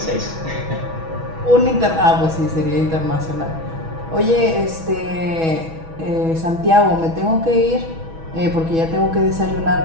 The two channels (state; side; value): late; left; 6.2 ms